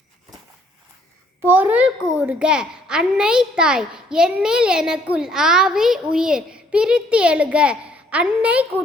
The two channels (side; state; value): both; normal; correlation 0.65